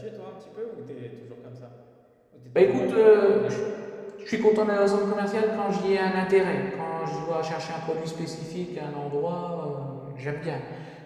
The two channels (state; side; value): identical; both; correlation 1.00